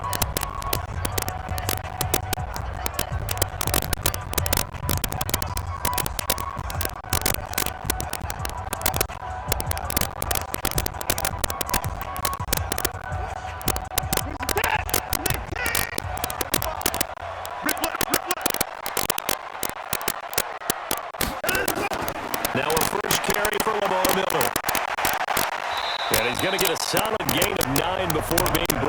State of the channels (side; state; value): both; identical; correlation 1.00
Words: Now a first carry for Lamar Miller. And he's going to get a solid gain of 9 before being